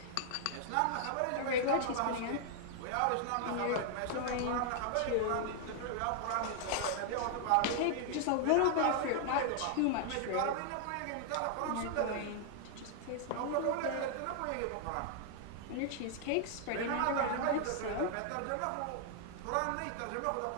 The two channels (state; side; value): different; both; correlation 0.00